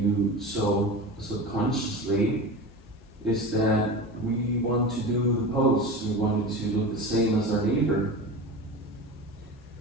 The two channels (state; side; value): normal; both; correlation 0.29